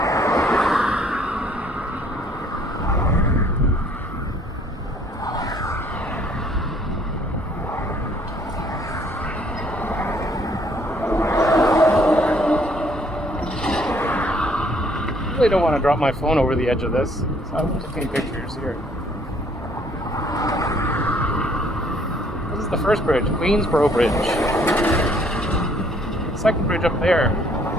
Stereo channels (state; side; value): normal; both; correlation 0.62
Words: I really don't want to drop my phone over the edge of this, so I'm just taking pictures here. This is the first bridge, Queensboro Bridge. The second bridge up there, you